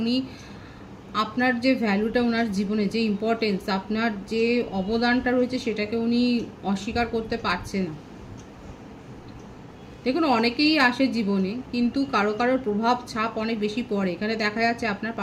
উনি আপনার যে ভ্যালুটা, ওনার জীবনে যে ইম্পর্টেন্স, আপনার যে অবদানটা রয়েছে সেটাকে উনি অস্বীকার করতে পারছে না। দেখুন, অনেকেই আসে জীবনে, কিন্তু কারো কারোর প্রভাব ছাপ অনেক বেশি পড়ে। এখানে দেখা যাচ্ছে আপনার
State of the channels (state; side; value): identical; both; correlation 1.00